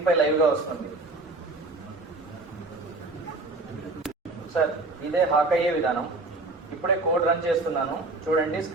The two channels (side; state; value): left; quieter; 3.2 dB